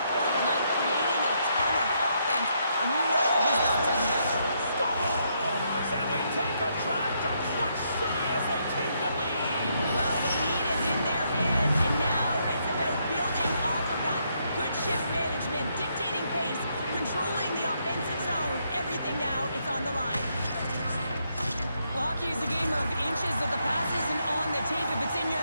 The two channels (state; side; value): inverted; both; correlation -0.76